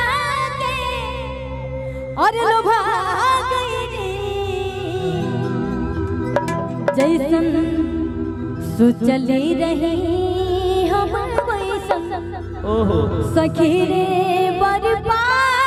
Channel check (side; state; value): both; identical; correlation 1.00